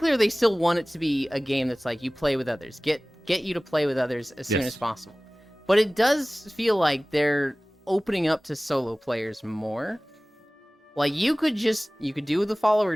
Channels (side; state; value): both; normal; correlation 0.98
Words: they still want it to be a game that's you play with others. Get you to play with others as soon as possible. But it does feel like they're opening up to solo players more. You could do the follower